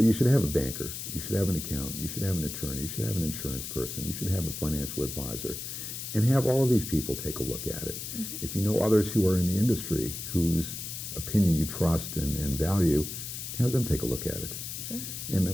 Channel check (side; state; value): left; noise; hiss, 7 dB below the sound